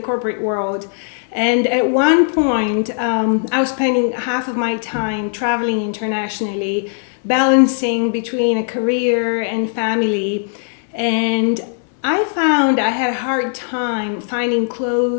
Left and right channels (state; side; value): silent; right; 67 dB below the other